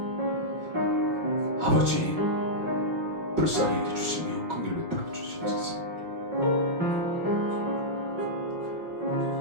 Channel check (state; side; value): late; left; 5.8 ms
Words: 아버지 불쌍히 여겨주시며 긍휼을 베풀어 주시옵소서.